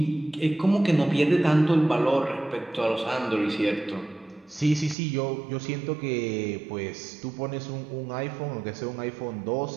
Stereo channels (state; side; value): drops out; left; at 5.0 s